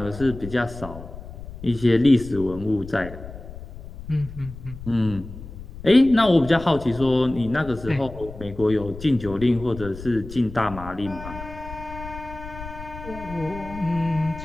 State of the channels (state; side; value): noise; left; rumble, 13 dB below the sound